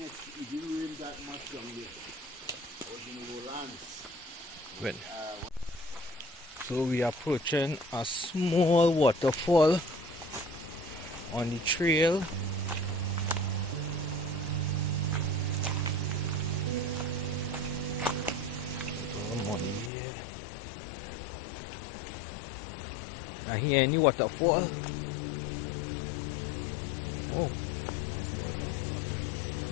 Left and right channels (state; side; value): drops out; right; at 19.9 s